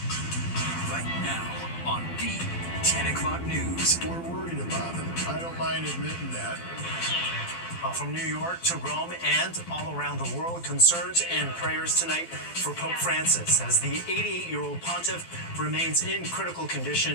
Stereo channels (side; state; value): right; late; 12 ms